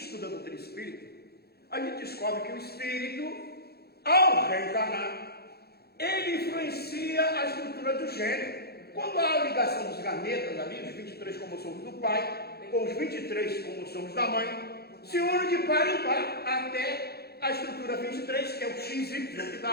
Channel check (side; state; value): right; late; 0.46 ms